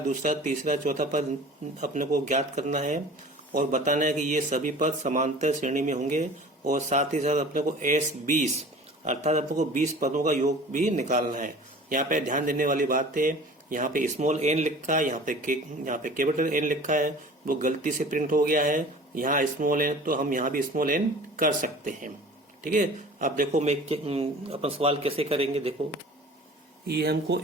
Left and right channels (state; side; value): normal; both; correlation 0.43